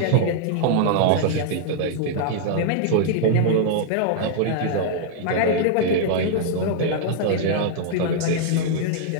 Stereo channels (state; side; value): different; both; correlation -0.01